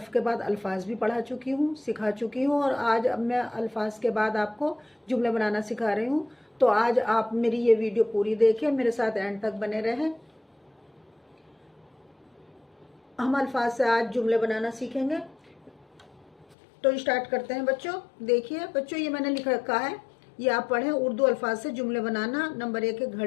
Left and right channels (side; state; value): right; drops out; at 16.6 s